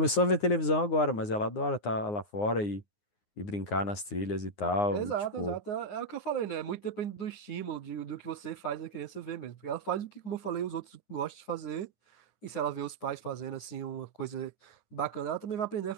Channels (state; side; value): late; right; 9.7 ms